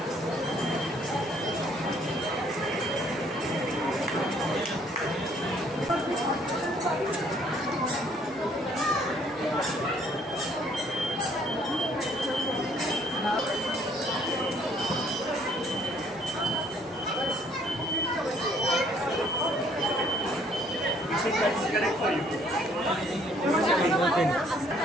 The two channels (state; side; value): normal; both; correlation 0.63